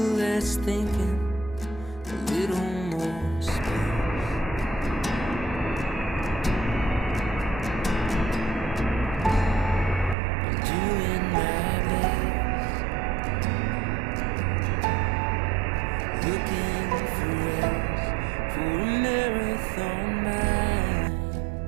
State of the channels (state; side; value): drops out; left; at 10.2 s